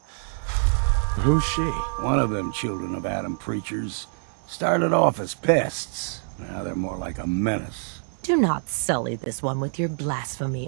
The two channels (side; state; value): left; silent; digital silence